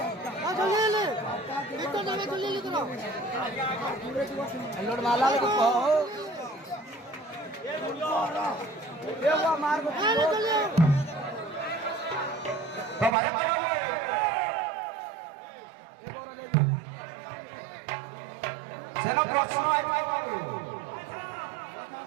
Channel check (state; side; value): drops out; left; at 13.2 s